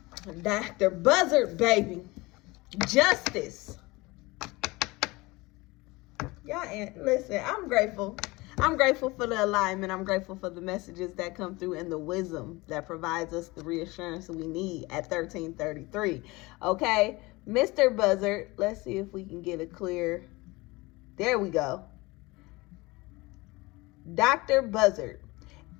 Dr. Buzzard, baby. Justice. Y'all, listen, I'm grateful. I'm grateful for the alignment. I'm grateful for the messages that come through and the wisdom that provides us the reassurance we need at 1333. Okay, Mr. Buzzard, let's see if we can get a clear. There we go. Dr. Buzzard,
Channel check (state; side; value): quieter; right; 22.6 dB